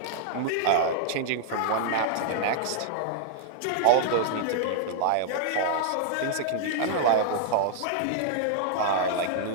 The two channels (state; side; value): different; both; correlation -0.01